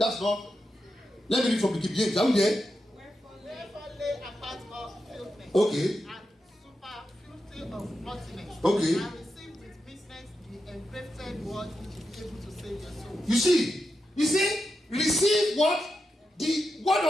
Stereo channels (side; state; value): both; normal; correlation 0.88